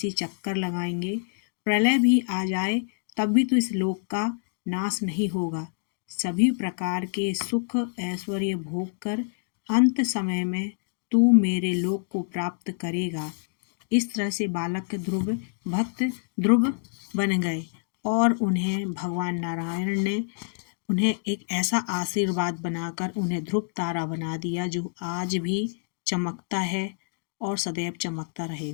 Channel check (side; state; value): right; silent; digital silence